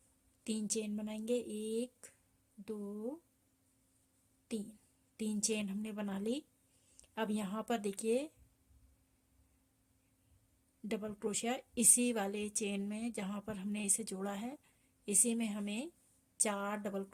3 चेन बनाएंगे, 1 2 3, 3 चेन हमने बना ली। अब यहाँ पर देखिए डबल क्रोशिया इसी वाले चेन में जहाँ पर हमने इसे जोड़ा है इसी में हमें 4 डबल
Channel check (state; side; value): identical; both; correlation 1.00